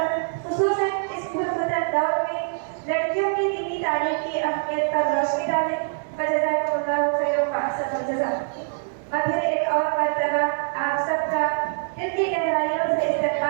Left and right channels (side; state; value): left; silent; digital silence